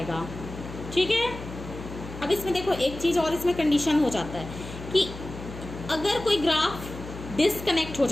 ठीक है। अब इसमें देखो एक चीज और इसमें कंडीशन हो जाता है कि अगर कोई ग्राफ डिसकनेक्ट हो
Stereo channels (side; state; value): left; noise; hum, 12 dB below the sound